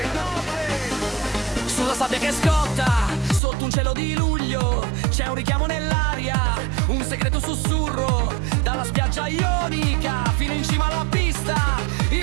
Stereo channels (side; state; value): left; drops out; at 3.4 s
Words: Sulla sabbia che scotta, sotto un cielo di luglio, c'è un richiamo nell'aria, un segreto sussurro, dalla spiaggia ionica fino in cima alla pista,